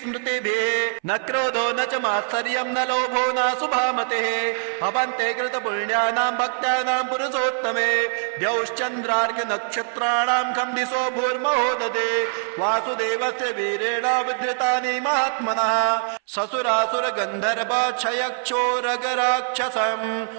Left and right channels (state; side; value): silent; left; 61 dB below the other